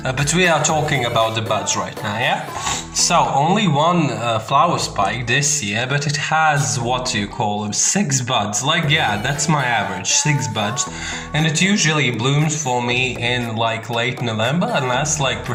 But we are talking about the buds right now, yeah? So, only one flower spike this year, but it has, what do you call them, 6 buds. Like, yeah, that's my average, 6 buds. And it usually blooms for me in like late November and lasts like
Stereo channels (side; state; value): both; identical; correlation 1.00